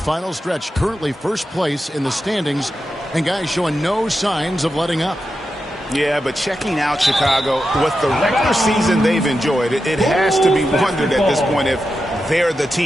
stretch. Currently first place in the standings, and guys showing no signs of letting up. Yeah, but checking out Chicago, with the regular season they've enjoyed, it has to be wondered at this point if they're the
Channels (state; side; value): normal; both; correlation 0.89